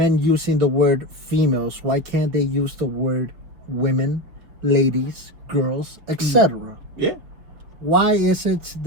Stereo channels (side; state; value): left; late; 6.1 ms